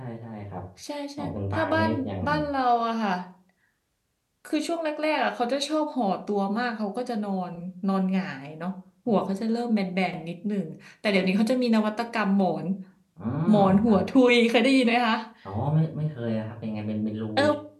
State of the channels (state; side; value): identical; both; correlation 1.00